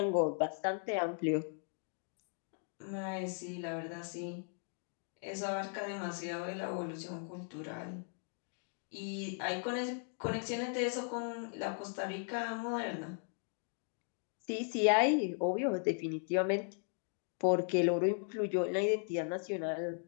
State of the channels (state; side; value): silent; right; 53 dB below the other